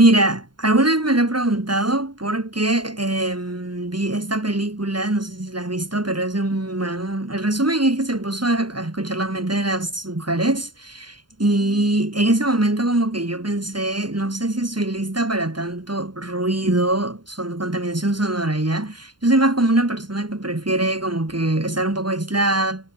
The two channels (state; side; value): late; left; 0.71 ms